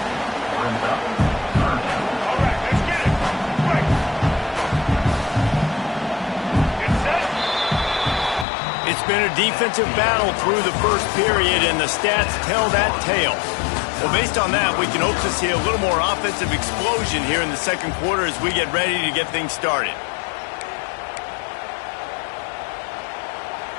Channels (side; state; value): right; drops out; at 8.5 s